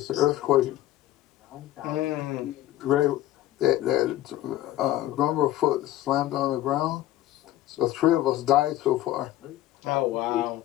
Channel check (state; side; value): quieter; right; 14.4 dB